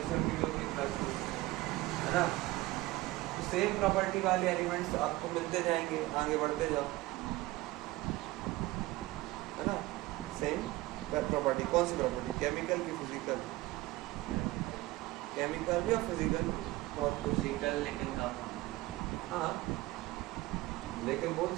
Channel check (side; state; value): left; quieter; 19.1 dB